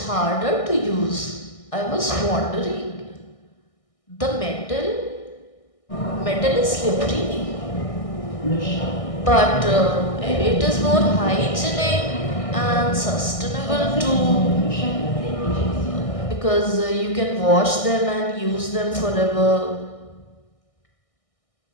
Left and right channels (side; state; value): right; late; 1.6 ms